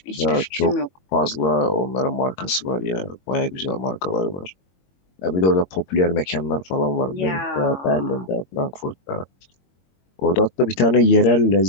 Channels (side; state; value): right; late; 22 ms